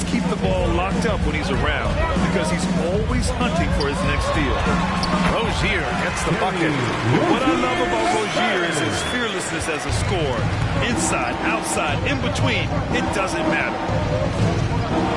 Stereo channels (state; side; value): identical; both; correlation 1.00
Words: keep the ball locked up when he's around, because he's always hunting for his next steal. Rozier gets the bucket. What I love about Rozier is his fearlessness as a scorer. Inside, outside, in between, it doesn't matter.